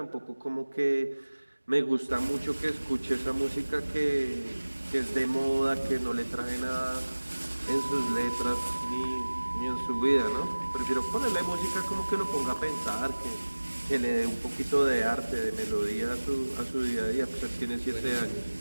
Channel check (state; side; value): inverted; both; correlation -1.00